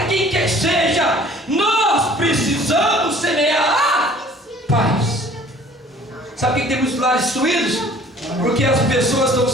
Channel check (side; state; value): both; normal; correlation 0.52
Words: quem quer seja, nós precisamos semear a paz. Sabe por que tem muitos lares destruídos? Porque as pessoas estão